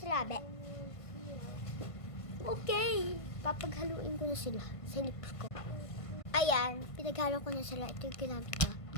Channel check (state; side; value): late; right; 1.5 ms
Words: labi? Okay, papaghaluin ko na sila sa lips ko. Ayan, pinaghalo ko na sila. Ito yung ginamit ko.